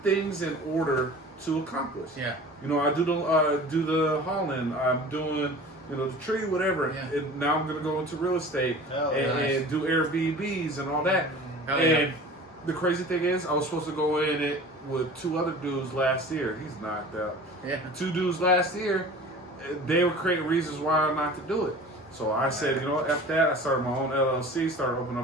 things in order to accomplish. You know, I do the hauling. I'm doing, the tree, whatever. And now I'm going to go into real estate and do Airbnbs and all that. And the crazy thing is, I was supposed to go in it with 2 other dudes last year. He's knocked out. 2 dudes last year, they were creating reasons why not to do it. So I said, you know what, F that. I started my own LLC, started opening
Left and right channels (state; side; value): normal; both; correlation 0.41